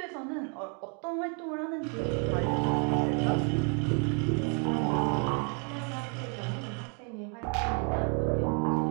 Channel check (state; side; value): quieter; left; 38.7 dB